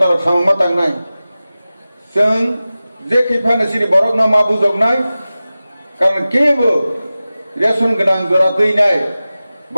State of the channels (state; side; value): inverted; both; correlation -0.96